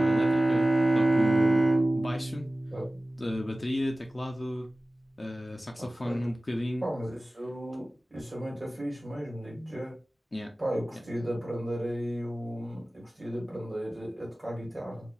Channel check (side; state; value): both; normal; correlation 0.97